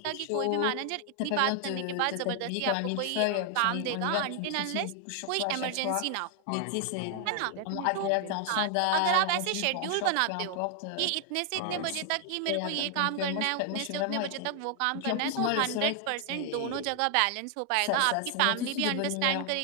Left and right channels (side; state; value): both; different; correlation 0.00